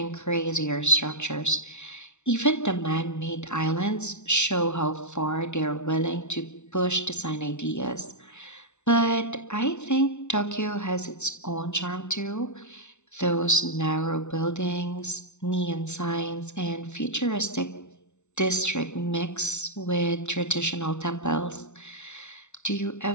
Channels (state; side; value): late; right; 0.82 ms